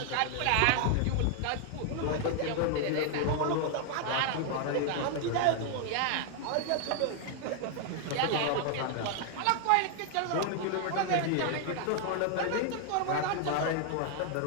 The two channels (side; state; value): both; different; correlation 0.00